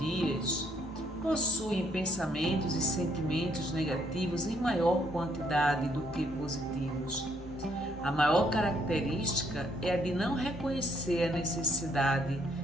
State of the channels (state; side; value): normal; both; correlation 0.70